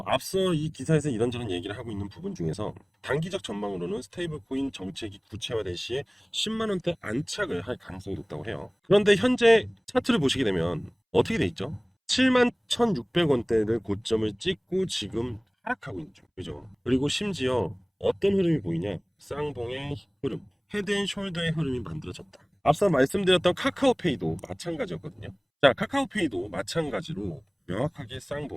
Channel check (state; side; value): identical; both; correlation 1.00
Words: 앞서 이 기사에서 이런저런 얘기를 하고 있는 부분 중에서 단기적 전망으로는 스테이블 코인 정책이 구체화될 시에 10만 원대 안착을 할 가능성이 높다고 해요. 그런데 현재 차트를 보시게 되면 어떻게 돼 있죠? 7만 1,600원대를 고점을 찍고 지금 하락하고 있는 중. 그죠? 그리고 심지어 어떤 흐름이 보이냐? 쌍봉의 흐름, 헤드앤숄더의 흐름이 만들어졌다. 앞서 말씀드렸던 카카오페이도 마찬가지였거든요. 자, 카카오페이도 마찬가지로 명확하게